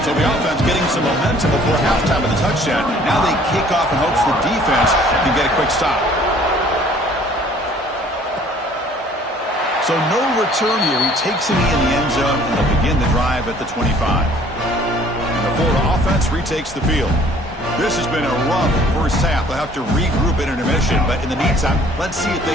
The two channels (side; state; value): both; normal; correlation 0.55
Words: So the offense getting some momentum before halftime of the touchdown. Now they kick off in hopes the defense can get a quick stop. So no return here. He takes it in the end zone, and they'll begin the drive at the 25. And the Florida offense retakes the field. This has been a rough first half. They'll have to regroup in intermission, but in the meantime, let's see if they